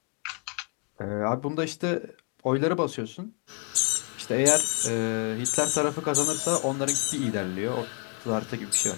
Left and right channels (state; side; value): quieter; right; 34.1 dB